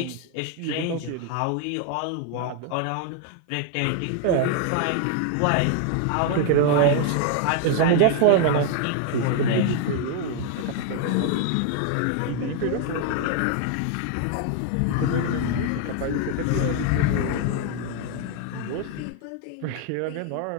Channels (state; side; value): different; both; correlation 0.00